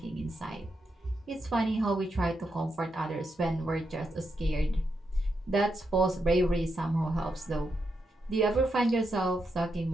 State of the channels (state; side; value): normal; both; correlation 0.83